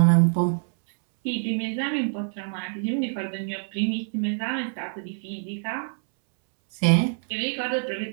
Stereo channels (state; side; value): silent; left; 61 dB below the other